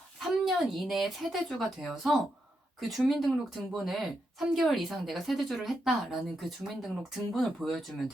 3년 이내에 세대주가 되어서 그 주민등록 등본을 3개월 이상 내가 세대주를 했다라는 그 주민등록 등본을 보여주면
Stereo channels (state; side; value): normal; both; correlation 0.83